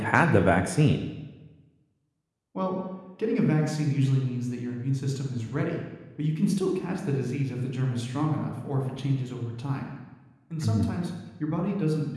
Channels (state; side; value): identical; both; correlation 1.00